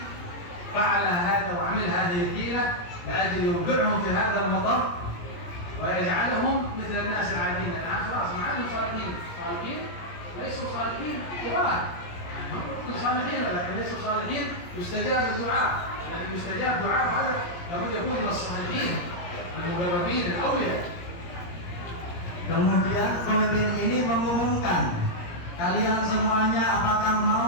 فعل هذا وعمل هذه الحيلة لأجل يوقعهم في هذا المطر ويجعلهم مثل الناس العاديين. الآن خلاص ما عادوا صالحين، صالحين ليسوا صالحين كبار، هم صالحين ولكن ليسوا صالحين. يستجاب الدعاء، لكن يستجاب دعاء هذا لابد يكون من الصالحين المقربين الأولياء. Kemudian pemimpin ini mengumumkan, kalian semuanya apakah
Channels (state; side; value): late; right; 17 ms